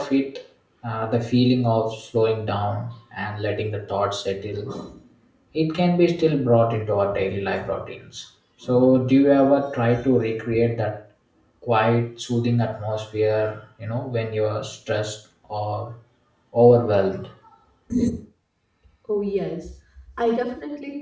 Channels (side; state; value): both; identical; correlation 1.00